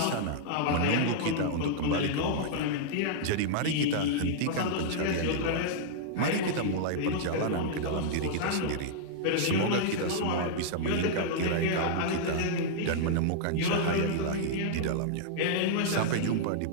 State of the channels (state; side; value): different; both; correlation -0.02